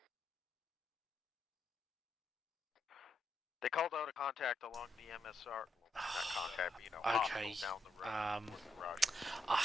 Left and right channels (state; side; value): normal; both; correlation 0.81